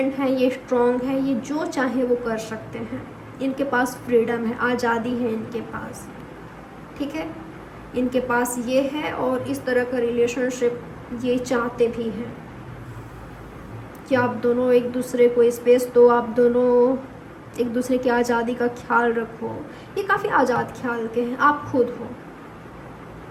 है, ये स्ट्रॉन्ग है, ये जो चाहे वो कर सकते हैं। इनके पास फ्रीडम है, आज़ादी है इनके पास। ठीक है, इनके पास ये है, और इस तरह का रिलेशनशिप ये चाहते भी हैं कि आप दोनों एक दूसरे को स्पेस दो, आप दोनों एक दूसरे की आज़ादी का ख्याल रखो। ये काफ़ी आज़ाद ख्याल के हैं, आप खुद हो।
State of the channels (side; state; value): both; identical; correlation 1.00